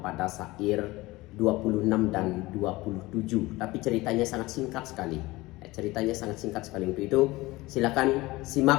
sair 26 dan 27. Tapi ceritanya sangat singkat sekali. Ceritanya sangat singkat sekali. Untuk itu silakan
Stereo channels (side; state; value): right; quieter; 20.2 dB